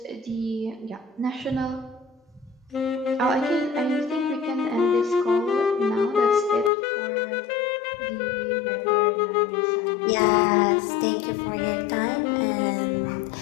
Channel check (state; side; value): drops out; right; at 6.7 s